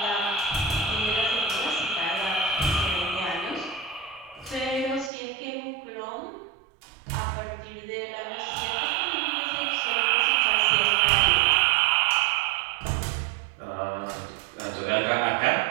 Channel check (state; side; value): drops out; left; at 5.1 s